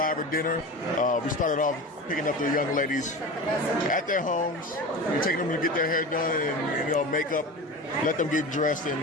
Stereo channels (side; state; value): both; normal; correlation 0.30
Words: dinner. We started off picking up the young ladies at their homes. We're taking them to get their hair done and makeup, let them get dressed and